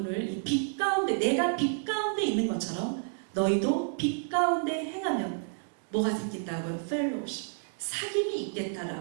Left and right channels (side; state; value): left; silent; digital silence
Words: 이 빛 가운데 내가 빛 가운데 있는 것처럼 너희도 빛 가운데 행하면 뭐가 생긴다고요? 펠로우십, 사귐이